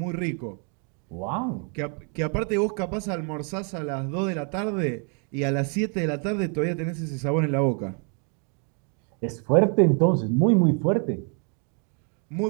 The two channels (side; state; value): left; quieter; 39.5 dB